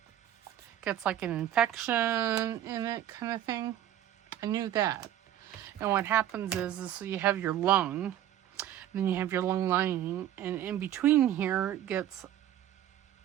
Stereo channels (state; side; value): quieter; left; 11.8 dB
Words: gets like an infection in it, kind of thing. I knew that. And what happens is so you have your lung, then you have your lung lining, and in between here gets